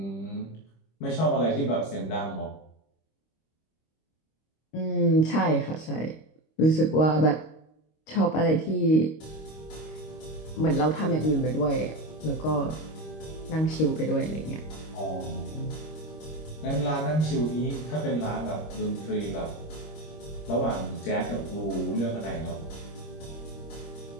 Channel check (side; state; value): right; late; 25 ms